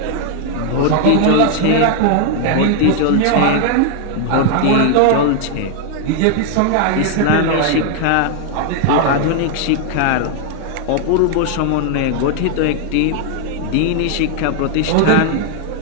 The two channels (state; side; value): different; both; correlation 0.00